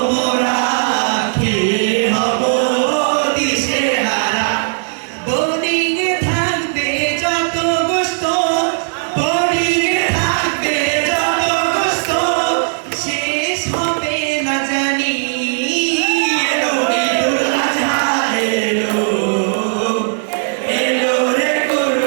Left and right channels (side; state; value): left; silent; 65 dB below the other